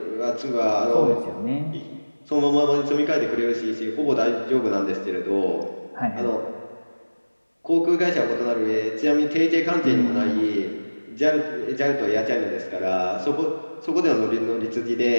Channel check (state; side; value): inverted; both; correlation -1.00